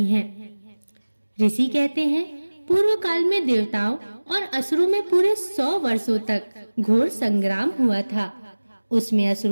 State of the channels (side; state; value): both; inverted; correlation -1.00